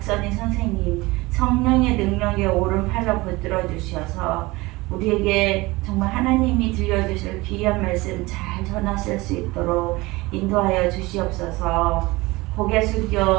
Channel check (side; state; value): left; quieter; 21.7 dB